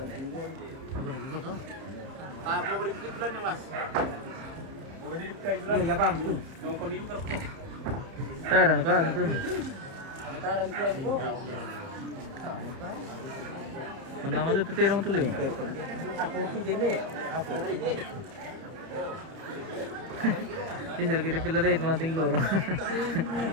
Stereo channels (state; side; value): late; left; 30 ms